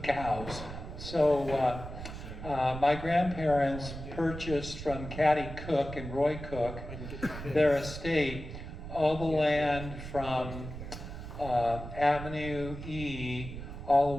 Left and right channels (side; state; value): right; noise; rumble, 10 dB below the sound